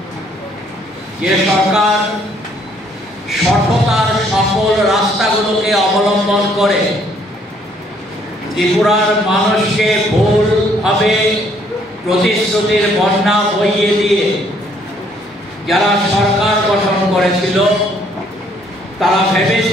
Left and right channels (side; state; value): both; normal; correlation 0.65